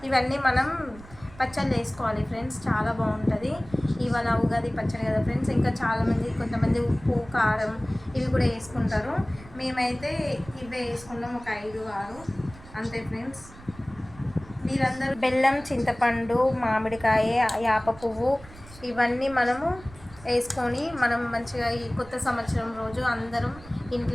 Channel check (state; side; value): noise; right; rumble, 20 dB below the sound